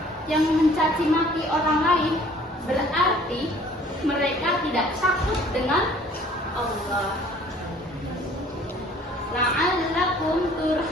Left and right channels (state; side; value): normal; both; correlation 0.54